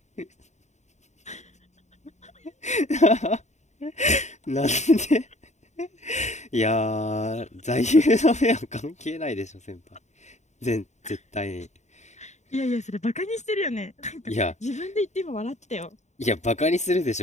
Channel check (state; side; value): late; right; 0.34 ms